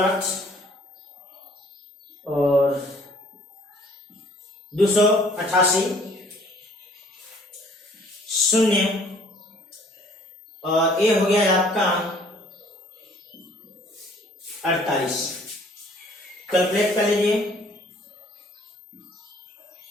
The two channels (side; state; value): both; normal; correlation 0.57